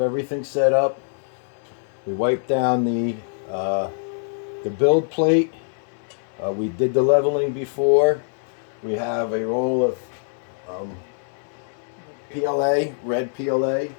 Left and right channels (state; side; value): silent; right; digital silence